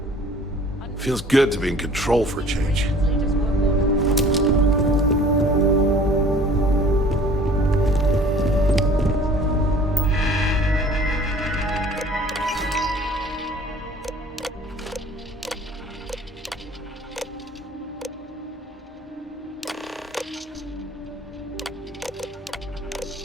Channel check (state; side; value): normal; both; correlation 0.50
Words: Feels good to be in control for a change.